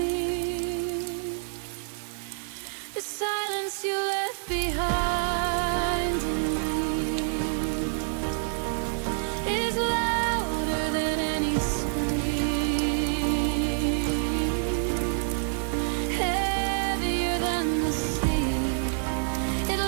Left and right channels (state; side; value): silent; left; digital silence